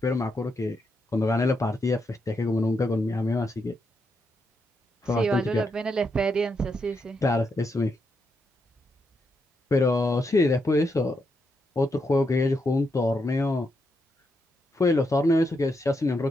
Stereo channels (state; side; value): normal; both; correlation 0.81